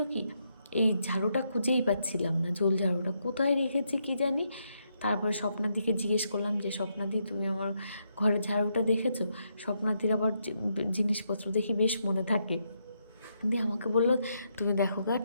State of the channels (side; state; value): both; inverted; correlation -0.79